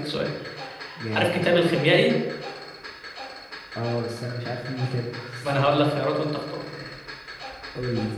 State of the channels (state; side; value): identical; both; correlation 1.00